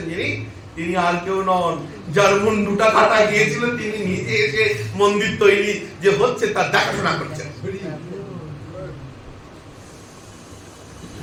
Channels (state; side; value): identical; both; correlation 1.00